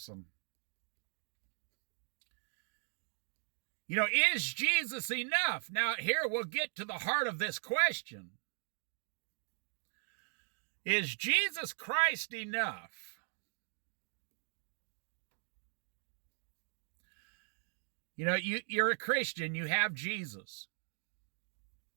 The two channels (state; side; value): silent; left; 52 dB below the other